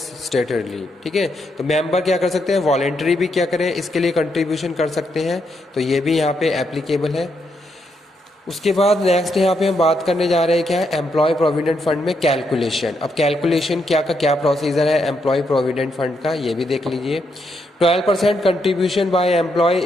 ठीक है। तो मेंबर क्या कर सकते हैं, वॉलेंटरी भी क्या करें, इसके लिए कंट्रीब्यूशन कर सकते हैं, तो ये भी यहाँ पे एप्लीकेबल है। उसके बाद नेक्स्ट यहाँ पे हम बात करने जा रहे हैं क्या है, एम्प्लॉय प्रोविडेंट फंड में कैलकुलेशन। अब कैलकुलेशन क्या का क्या प्रोसीजर है एम्प्लॉय प्रोविडेंट फंड का, ये भी देख लीजिए। 12% contribution by employ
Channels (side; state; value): both; normal; correlation 0.79